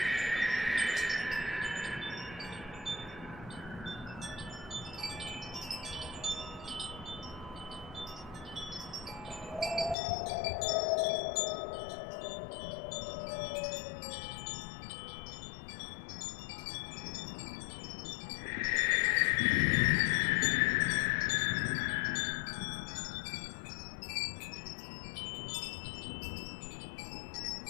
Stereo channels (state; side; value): drops out; right; at 10.0 s